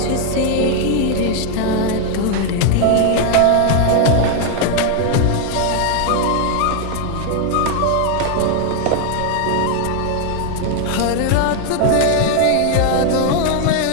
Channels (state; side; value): different; both; correlation 0.00